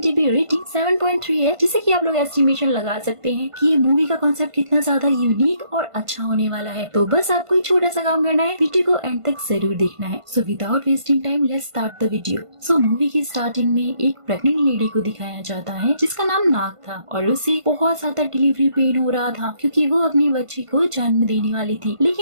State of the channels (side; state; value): left; late; 1.5 ms